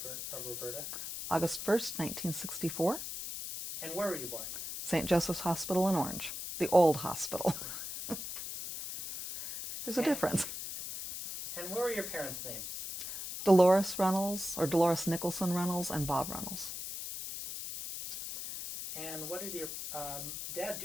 Roberta? August 1st, 1964. And where were you born? St. Joseph's Hospital in Orange, the old hospital. There's a difference. And what were your parents' names? Dolores Runnels, or Dolores Nicholson Runnels, and Bob Runnels. And what did your dad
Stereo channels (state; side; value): noise; left; hiss, 7 dB below the sound